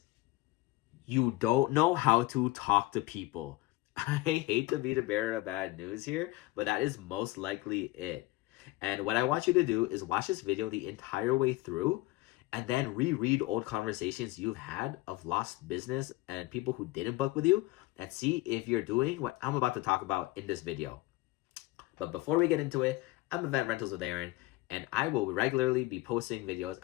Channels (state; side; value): quieter; right; 19.8 dB